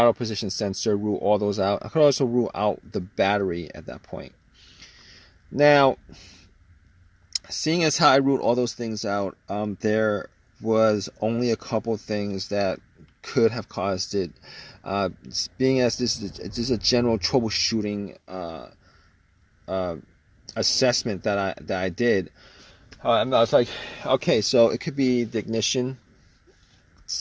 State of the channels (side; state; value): both; identical; correlation 1.00